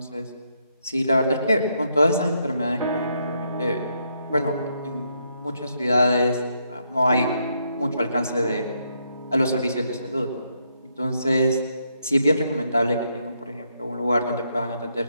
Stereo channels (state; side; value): inverted; both; correlation -0.77